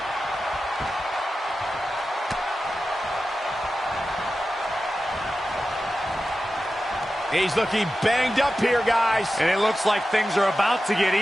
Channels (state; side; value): normal; both; correlation 0.93